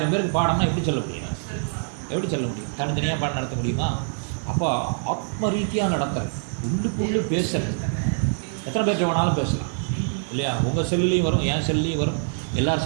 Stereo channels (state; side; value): silent; left; digital silence